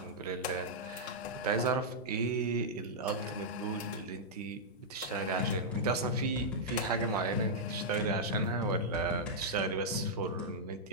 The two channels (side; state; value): both; normal; correlation -0.08